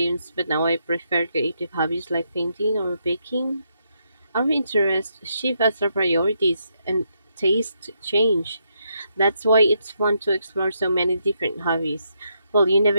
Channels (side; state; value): both; inverted; correlation -0.79